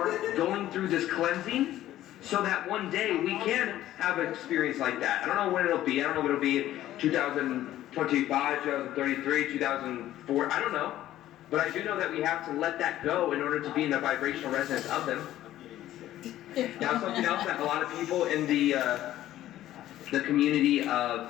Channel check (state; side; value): quieter; right; 13.6 dB